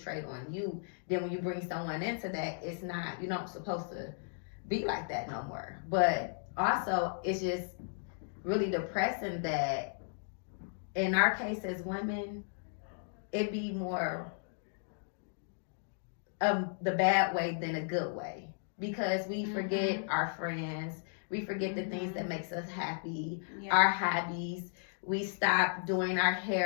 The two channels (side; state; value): right; silent; digital silence